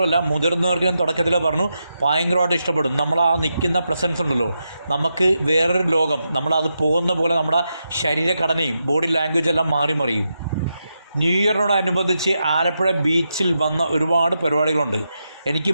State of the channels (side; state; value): both; inverted; correlation -0.86